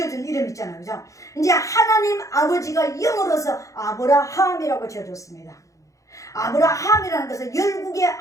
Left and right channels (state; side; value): late; right; 0.16 ms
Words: 이름 있잖아요. 그죠? 이제 하나님 아버지가 영으로서 아브라함이라고 지어줬습니다. 아브라함이라는 것은 열국의